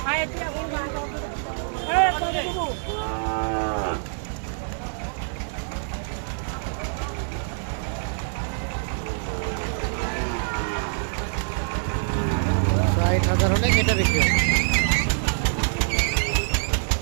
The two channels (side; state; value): left; silent; digital silence